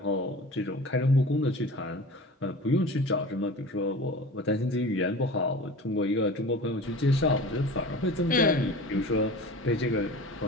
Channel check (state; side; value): normal; both; correlation 0.37